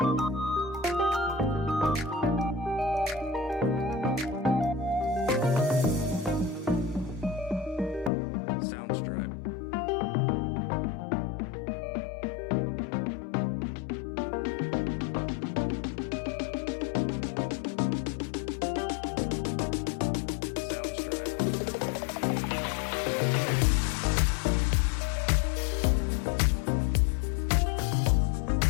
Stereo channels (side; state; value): right; drops out; at 8.1 s